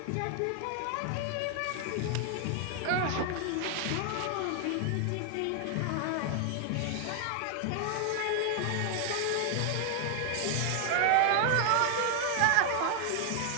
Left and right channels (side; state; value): both; different; correlation 0.00